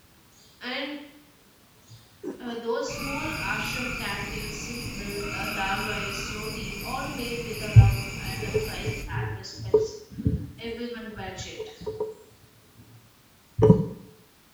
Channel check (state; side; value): identical; both; correlation 1.00